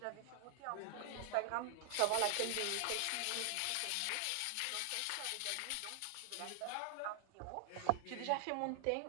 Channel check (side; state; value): both; different; correlation 0.00